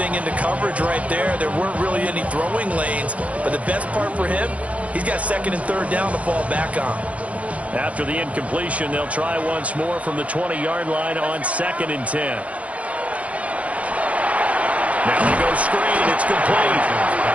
into coverage right there. There weren't really any throwing lanes, but the best part for him, he's got 2nd and 3rd down to fall back on. After the incompletion, they'll try once more from the 20-yard line on 2nd and 10. Now they go screen. It's complete.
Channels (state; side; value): late; left; 0.066 ms